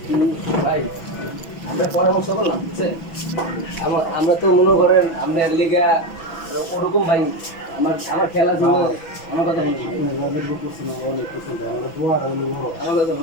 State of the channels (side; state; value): right; late; 6.0 ms